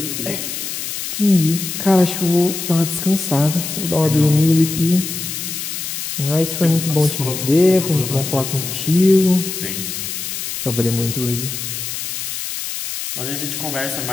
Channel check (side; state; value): left; noise; hiss, 5 dB below the sound